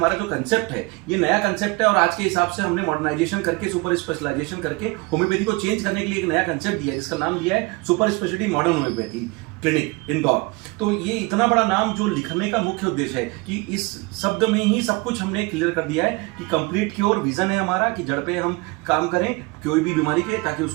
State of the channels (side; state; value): left; quieter; 25.0 dB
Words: जो कंसेप्ट है ये नया कंसेप्ट है, और आज के हिसाब से हमने मॉडर्नाइजेशन करके, सुपर स्पेशलाइजेशन करके होम्योपैथी को चेंज करने के लिए एक नया कंसेप्ट दिया है, जिसका नाम दिया है super speciality modern homeopathy clinic Indore. तो ये इतना बड़ा नाम जो लिखने का मुख्य उद्देश्य है कि इस शब्द में ही सब कुछ हमने क्लियर कर दिया है कि कंप्लीट क्योर विजन है हमारा, कि जड़ पे हम काम करें कोई भी बीमारी के, ताकि